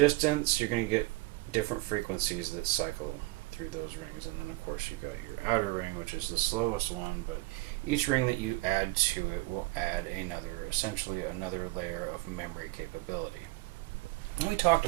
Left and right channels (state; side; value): quieter; left; 21.6 dB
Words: you're going to get different frequencies that cycle through those rings, and then of course you've got your outer ring, which is the slowest one, but each ring that you add to it will add essentially another layer of memory capability. And we talked